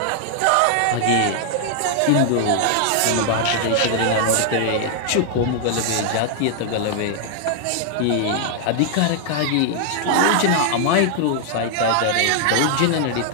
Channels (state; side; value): different; both; correlation 0.00